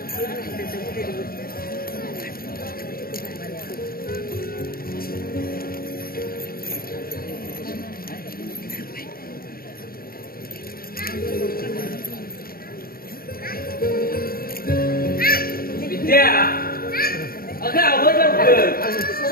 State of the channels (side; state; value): right; late; 0.43 ms